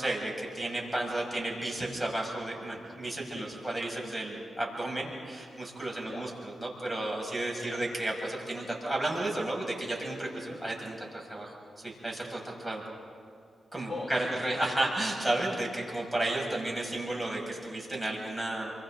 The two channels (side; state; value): both; normal; correlation 0.92